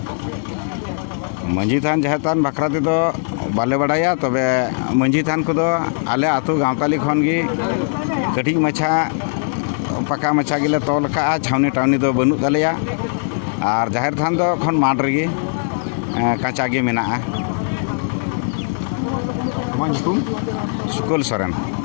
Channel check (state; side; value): silent; right; digital silence